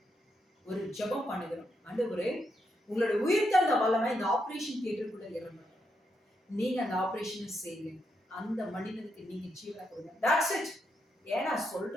ஒரு ஜெபம் பண்ணுகிறோம். ஆண்டவரே, உங்களோட உயிர்த்தெழுந்த வல்லமை இந்த ஆபரேஷன் தியேட்டருக்குள்ள இறங்கணும். நீங்க அந்த ஆபரேஷனை செய்யுங்க. அந்த மனிதனுக்கு நீங்க ஜீவனை கொடுங்க. That's it. ஏன்னா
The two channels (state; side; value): normal; both; correlation 0.81